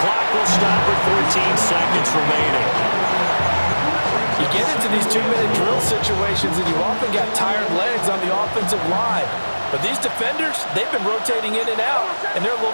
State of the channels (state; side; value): inverted; both; correlation -1.00